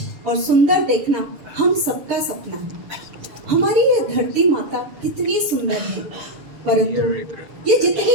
और सुंदर देखना हम सबका सपना है। हमारी ये धरती माता कितनी सुंदर है, परंतु ये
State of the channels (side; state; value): left; late; 6.7 ms